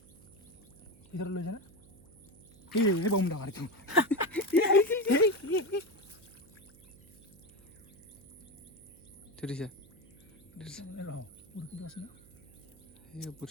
ভিতৰত লৈ যায় না বম ডাঙৰ এইটো ধৰিছে বৰশীটো আছে না এই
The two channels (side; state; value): right; noise; hum, 26 dB below the sound